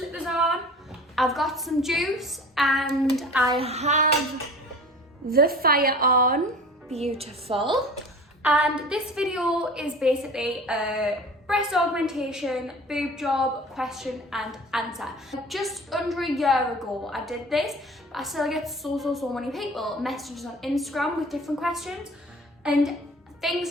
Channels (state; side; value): normal; both; correlation 0.41